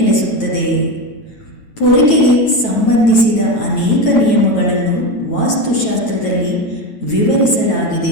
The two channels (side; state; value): right; late; 9.1 ms